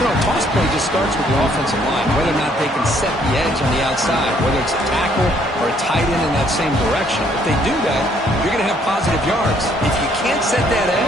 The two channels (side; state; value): both; normal; correlation 0.66